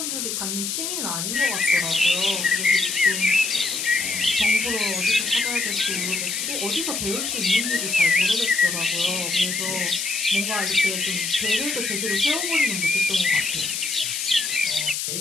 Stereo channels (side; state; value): left; noise; hiss, 2 dB below the sound